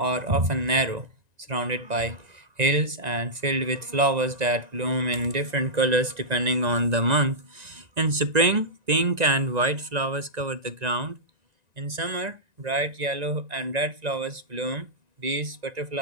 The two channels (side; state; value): left; late; 1.9 ms